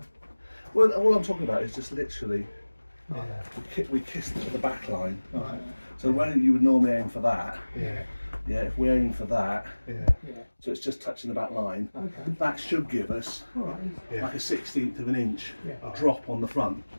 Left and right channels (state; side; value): inverted; both; correlation -1.00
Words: Well, all I'm talking about is just literally, Yeah. we kissed at the back line. Right. So where you would normally aim for that, Yeah. if we're aiming for that, Yeah. so it's just touching the back line, Okay. that should give us All right. like a 1/16 of an inch Yeah. drop on the front,